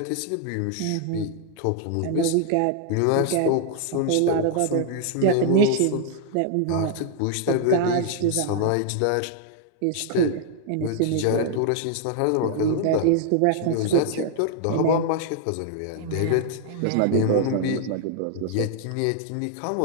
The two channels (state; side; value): different; both; correlation 0.00